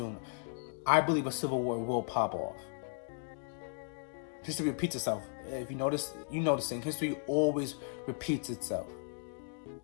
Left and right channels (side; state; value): right; silent; digital silence